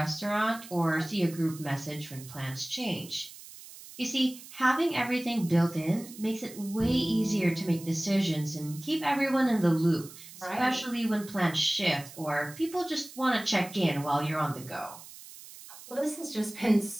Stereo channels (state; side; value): noise; right; hiss, 17 dB below the sound